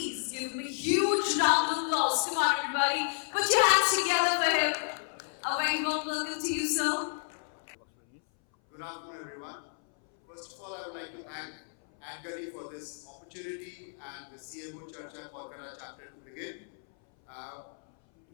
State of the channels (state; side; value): silent; right; 57 dB below the other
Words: give him a huge round of applause? Come on, everybody. Put your hands together for him. A very warm welcome to you, sir. Good afternoon, everyone. First of all, I would like to thank Adgully for this opportunity and the CMO Charcha Kolkata chapter to begin. To